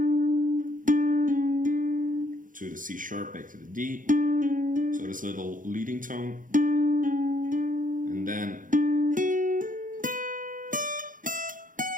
to the C sharp, back to the D. So this little leading tone. And then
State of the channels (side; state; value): left; late; 0.39 ms